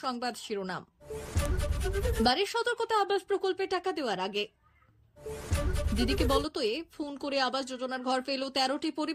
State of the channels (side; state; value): both; identical; correlation 1.00